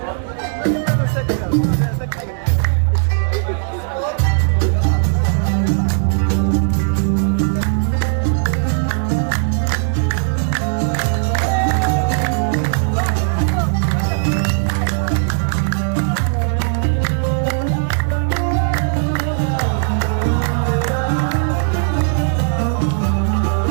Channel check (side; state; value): left; silent; digital silence